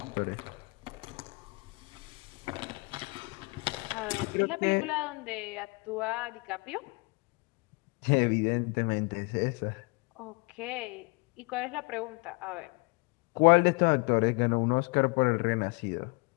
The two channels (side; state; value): right; quieter; 28.9 dB